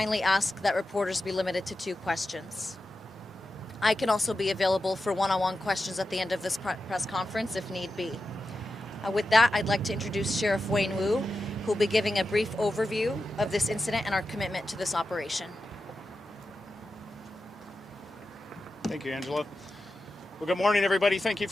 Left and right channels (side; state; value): both; normal; correlation 0.91